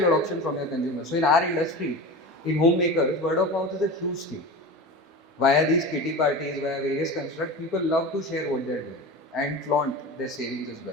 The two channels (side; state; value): both; normal; correlation 0.29